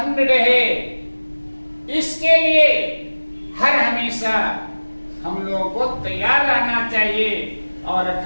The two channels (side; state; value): both; inverted; correlation -1.00